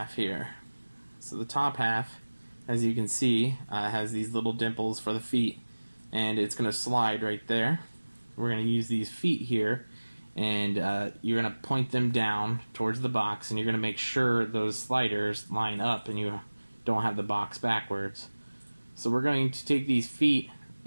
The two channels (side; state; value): both; inverted; correlation -1.00